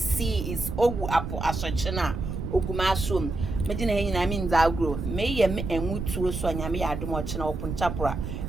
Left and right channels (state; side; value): noise; right; rumble, 5 dB below the sound